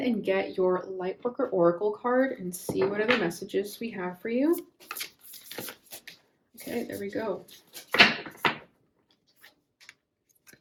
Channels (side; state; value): both; identical; correlation 1.00